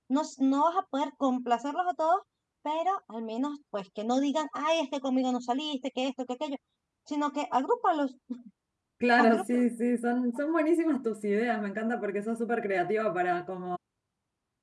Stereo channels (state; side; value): identical; both; correlation 1.00